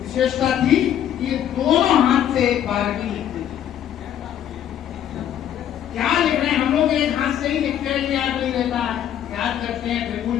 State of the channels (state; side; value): quieter; right; 10.4 dB